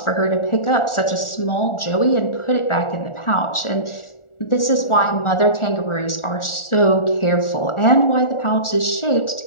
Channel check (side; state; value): right; late; 1.4 ms